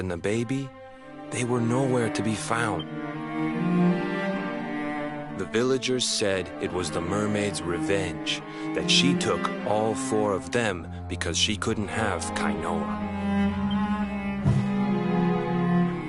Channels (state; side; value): identical; both; correlation 1.00